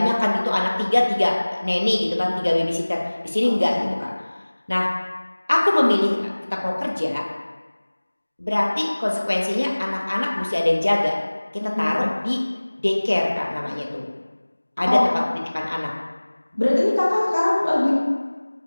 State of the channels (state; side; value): inverted; both; correlation -1.00